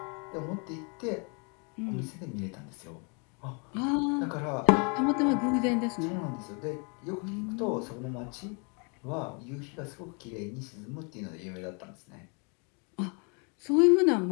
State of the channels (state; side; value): quieter; right; 35.2 dB